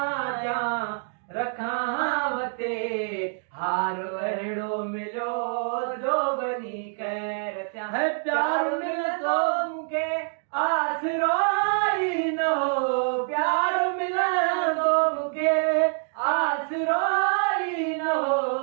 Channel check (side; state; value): left; silent; 61 dB below the other